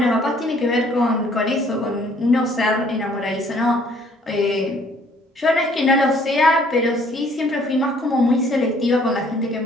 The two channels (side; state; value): both; normal; correlation 0.60